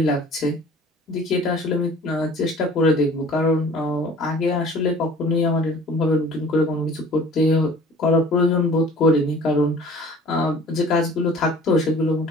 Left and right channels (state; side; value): normal; both; correlation 0.47